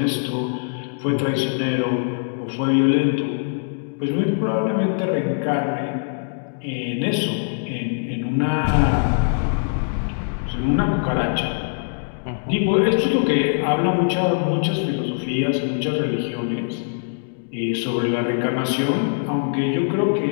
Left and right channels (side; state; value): right; silent; digital silence